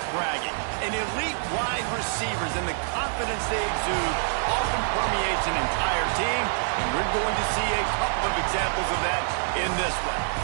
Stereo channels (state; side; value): silent; left; digital silence